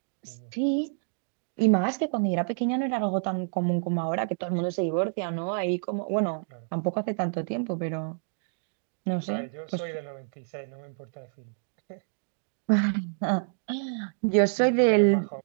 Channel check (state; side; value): silent; left; digital silence